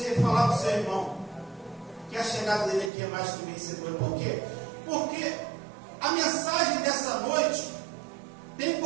falar para o seu irmão que a chegada dele aqui é mais que vencedora? Por quê? Porque a mensagem dessa noite tem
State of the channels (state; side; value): drops out; left; at 2.9 s